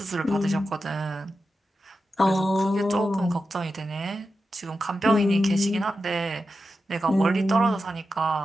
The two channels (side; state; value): both; normal; correlation 0.90